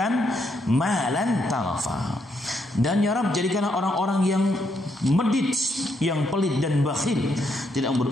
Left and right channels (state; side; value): normal; both; correlation 0.76